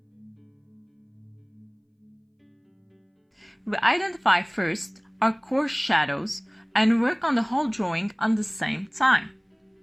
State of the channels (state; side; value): identical; both; correlation 1.00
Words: We identify first our coarse shadows and work on the whole drawing at the same time.